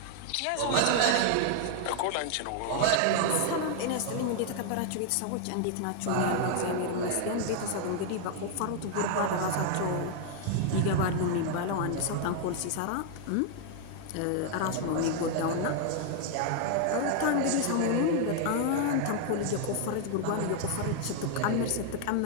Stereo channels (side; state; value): both; different; correlation 0.00